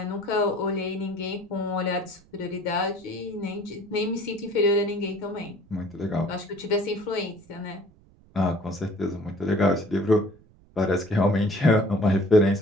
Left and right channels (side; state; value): right; noise; rumble, 28 dB below the sound